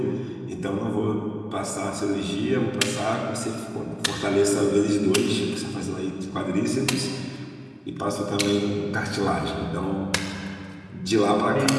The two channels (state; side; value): identical; both; correlation 1.00